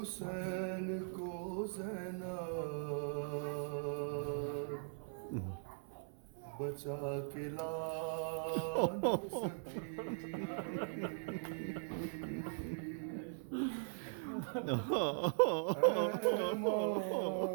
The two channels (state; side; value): silent; left; 51 dB below the other